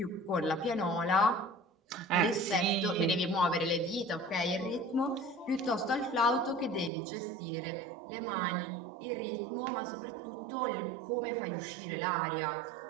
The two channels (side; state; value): left; drops out; at 6.9 s